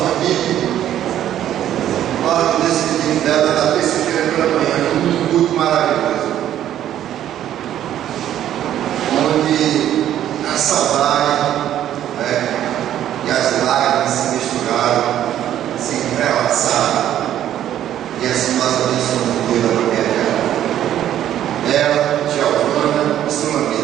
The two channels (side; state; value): left; quieter; 11.4 dB